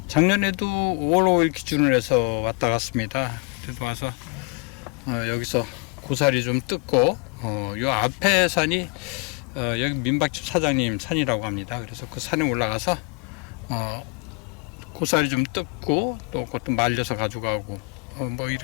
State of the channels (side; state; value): right; quieter; 33.8 dB